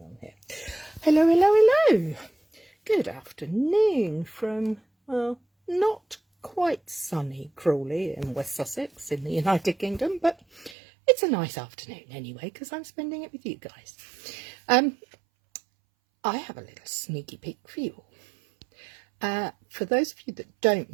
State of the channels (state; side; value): drops out; left; at 10.8 s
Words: on here. Hello. Good afternoon from, well, not quite sunny Crawley in West Sussex in the United Kingdom, but it's a nice afternoon anyway, because I'm spending it with you guys. I have a little sneaky peek for you all. For those of you that don't